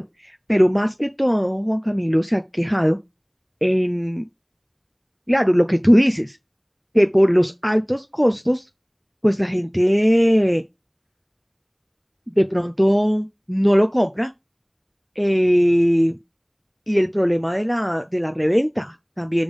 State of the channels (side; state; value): both; identical; correlation 1.00